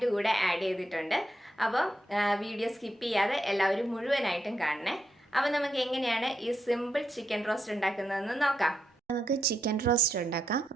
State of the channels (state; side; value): normal; both; correlation 0.82